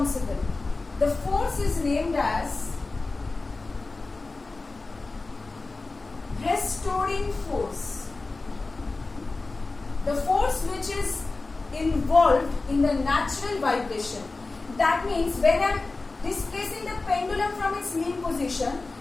The force is named as restoring force. The force which is involved in the natural vibration. That means when I am displacing the pendulum from its mean position,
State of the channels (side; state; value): right; quieter; 3.5 dB